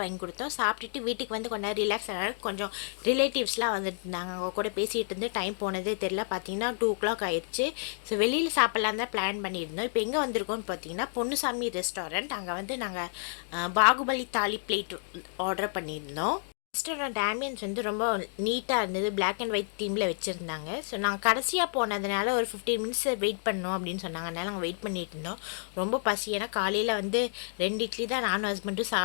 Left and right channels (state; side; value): silent; right; digital silence